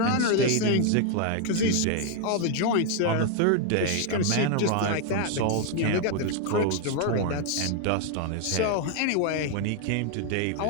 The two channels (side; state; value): both; different; correlation 0.01